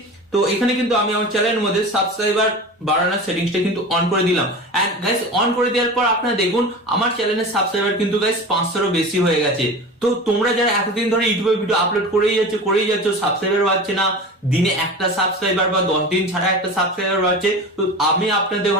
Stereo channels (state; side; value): normal; both; correlation 0.32